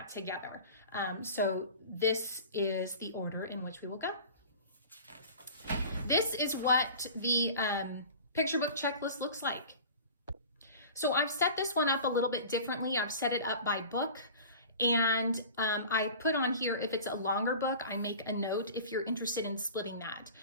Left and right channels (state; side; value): inverted; both; correlation -0.39